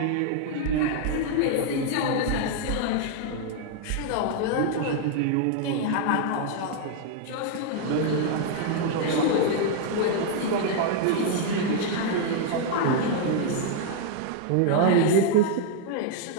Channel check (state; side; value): different; both; correlation 0.00